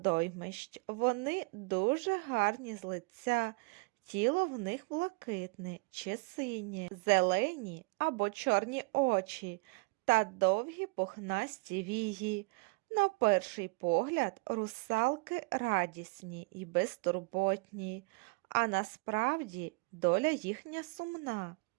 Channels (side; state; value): left; quieter; 29.3 dB